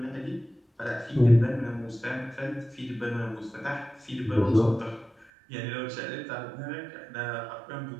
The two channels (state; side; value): drops out; left; at 5.2 s